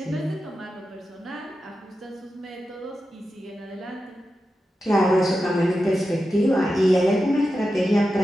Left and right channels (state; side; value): normal; both; correlation 0.91